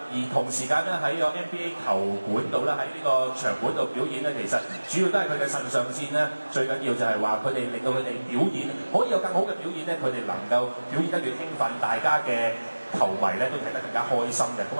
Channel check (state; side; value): inverted; both; correlation -1.00